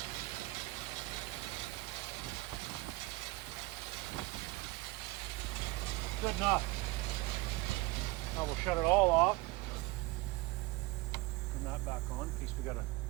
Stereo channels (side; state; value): left; quieter; 21.4 dB